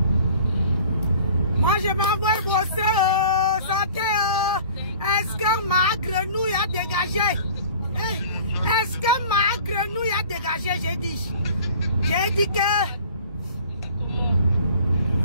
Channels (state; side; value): inverted; both; correlation -0.47